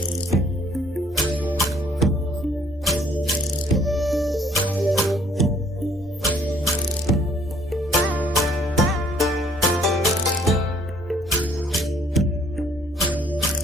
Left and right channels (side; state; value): both; normal; correlation 0.61